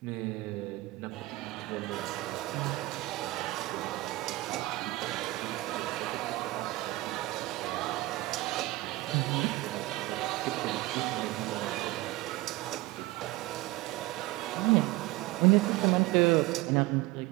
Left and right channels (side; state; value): left; quieter; 19.8 dB